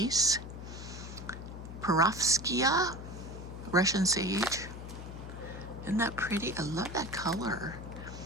Perovskia, Russian sage. Isn't that pretty? I love that color.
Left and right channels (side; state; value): left; noise; hum, 10 dB below the sound